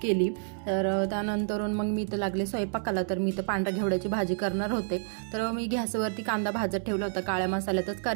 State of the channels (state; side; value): silent; left; 59 dB below the other